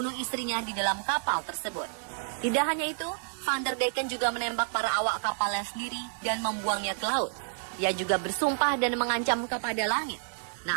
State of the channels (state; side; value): silent; left; digital silence